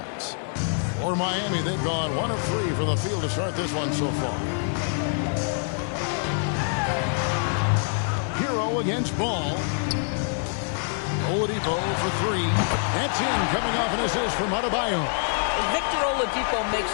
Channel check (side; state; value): right; silent; 59 dB below the other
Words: For Miami, they've gone 1 of 3 from the field to start this one so far. Hero against Ball. Oladipo for 3. That's in, coming off an assist from Adebayo. Victor Oladipo makes